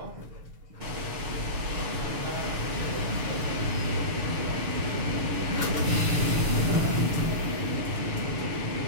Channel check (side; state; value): left; late; 6.9 ms